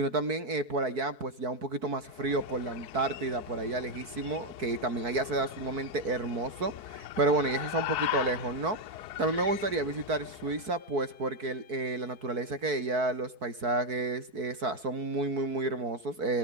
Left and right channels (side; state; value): left; late; 4.6 ms